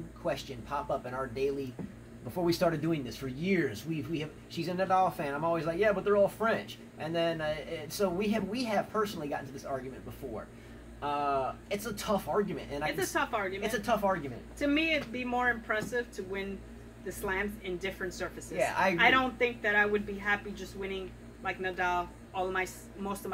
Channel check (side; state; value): both; identical; correlation 1.00